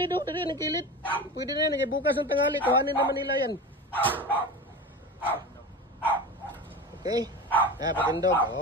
do. Dito yung kilid. Pwede na yan. Bukas ng tanghali. Kuhanin naman nila yan. Okay. Patindog.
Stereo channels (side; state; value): both; normal; correlation 0.29